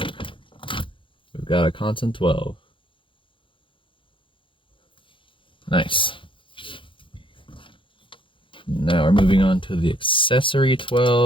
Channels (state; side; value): late; right; 0.25 ms